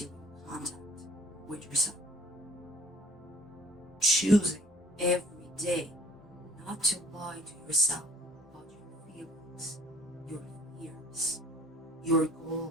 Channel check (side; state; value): both; normal; correlation 0.53